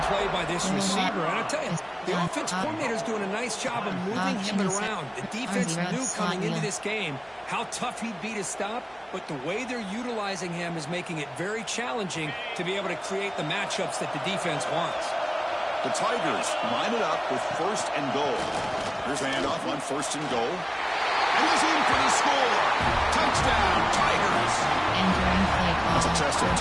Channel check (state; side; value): identical; both; correlation 1.00